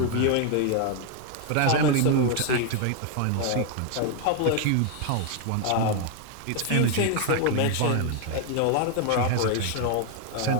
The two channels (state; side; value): different; both; correlation 0.00